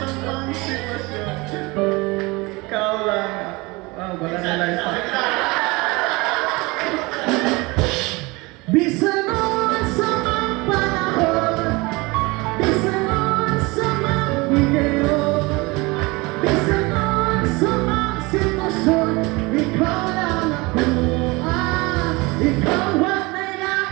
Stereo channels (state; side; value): quieter; left; 24.3 dB